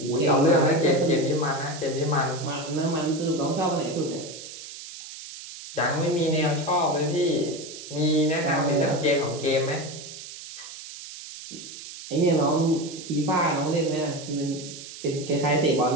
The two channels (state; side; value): noise; right; hiss, 13 dB below the sound